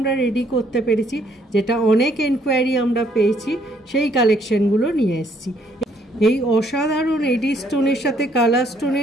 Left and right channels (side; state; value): both; normal; correlation 0.67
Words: रेडी करते पेरेछि जेटा अनेक एनकोयारि आमरा पेয়েছি সেই কালেকশনগুলো নিয়ে এসেছি। এই অসাধারণ এডি স্টোনের সাথে কালার